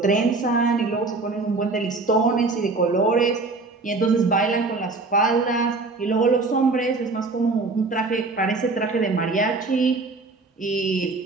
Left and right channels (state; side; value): quieter; left; 3.7 dB